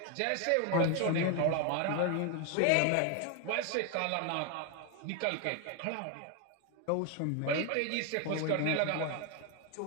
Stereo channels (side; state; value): both; different; correlation 0.01